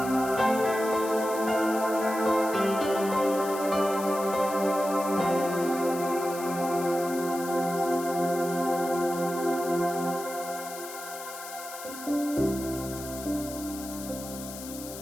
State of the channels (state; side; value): noise; left; hiss, 12 dB below the sound